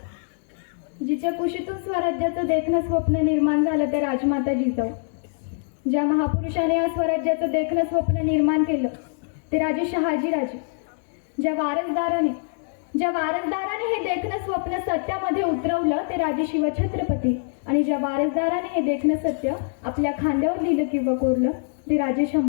जिच्या कुशीतून स्वराज्याचं देखणं स्वप्न निर्माण झालं ते राजमाता जिजाऊ. ज्या महापुरुषाने या स्वराज्याचं देखणं स्वप्न निर्माण केलं ते राजे शहाजीराजे. ज्या वारसदाराने हे देखणं स्वप्न सत्यामध्ये उतरवलं ते राजे शिवछत्रपती. आणि ज्या वारसदाराने हे देखणं सत्य आपल्या खांद्यावर लिहिलं किंवा कोरलं ते राजे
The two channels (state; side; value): silent; right; digital silence